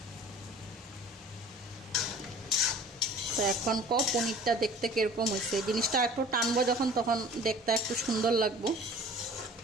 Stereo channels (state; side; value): normal; both; correlation 0.46